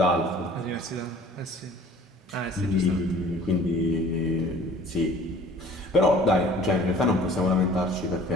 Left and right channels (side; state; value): both; normal; correlation 0.51